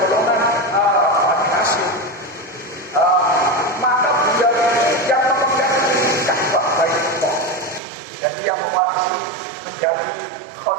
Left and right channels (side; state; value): left; drops out; at 7.8 s